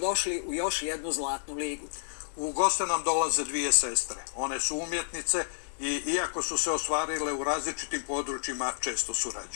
u još jednu Zlatnu ligu. U goste nam dolaze dvije sestre. One su umjetnice i iako su se ostvarile u različitim područjima, često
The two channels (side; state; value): right; silent; digital silence